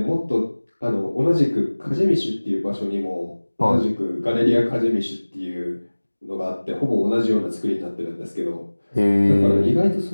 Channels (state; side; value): inverted; both; correlation -1.00